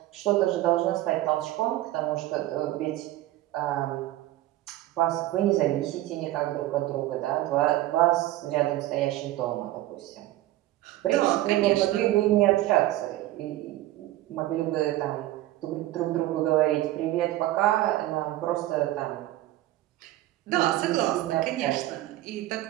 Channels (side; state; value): left; quieter; 15.6 dB